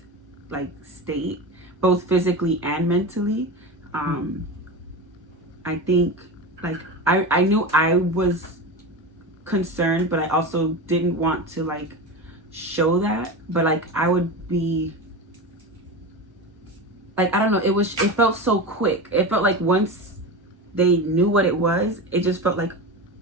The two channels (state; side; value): normal; both; correlation 0.24